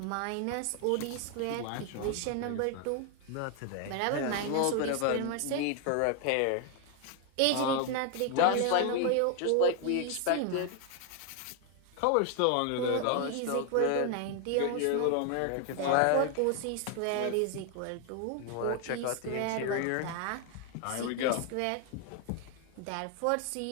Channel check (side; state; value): both; different; correlation 0.00